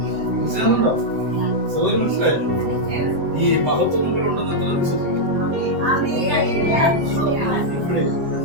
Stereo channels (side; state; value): left; late; 7.7 ms